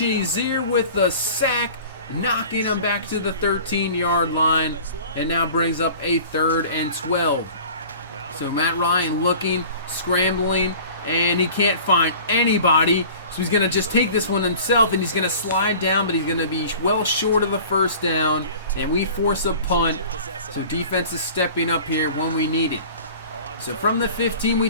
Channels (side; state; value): both; inverted; correlation -0.43